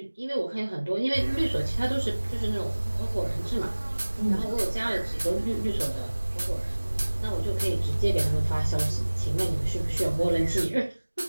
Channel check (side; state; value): both; inverted; correlation -1.00